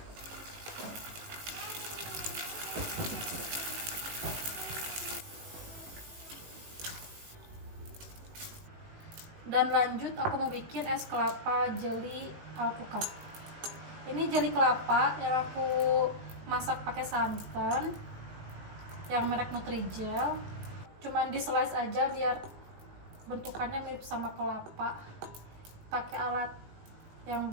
Dan lanjut aku mau bikin es kelapa jeli alpukat. Ini jeli kelapa yang aku masak pakai santan yang merek Nutrijel. Cuman di slice aja biar bentukannya mirip sama kelapa. Pakai alat yang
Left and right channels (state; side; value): late; left; 18 ms